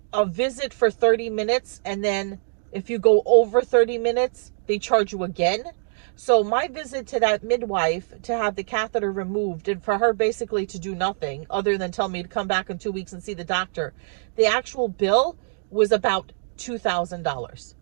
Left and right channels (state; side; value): silent; left; digital silence